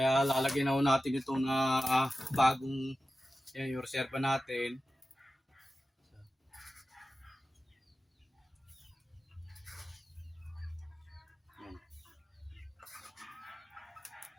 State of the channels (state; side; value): normal; both; correlation 0.94